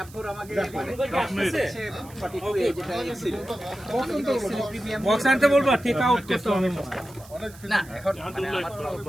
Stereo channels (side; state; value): right; noise; hiss, 21 dB below the sound